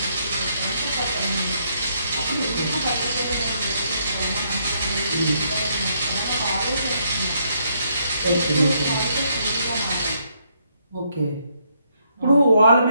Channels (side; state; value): both; inverted; correlation -0.73